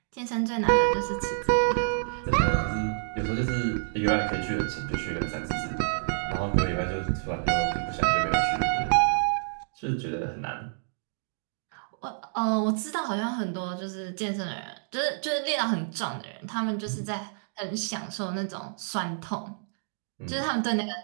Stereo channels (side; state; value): left; silent; digital silence